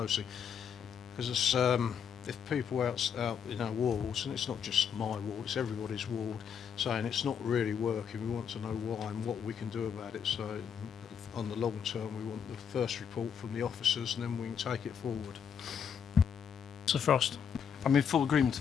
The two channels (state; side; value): quieter; right; 7.6 dB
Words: because it's, if people out in our wards, and it's not just my ward, it's everybody's ward, saying it's not really working, we want to know why and what we can do about it. So on the long term, we want the first report from the officers, and then we can take it forward. Sir Frost? I'm in full agreement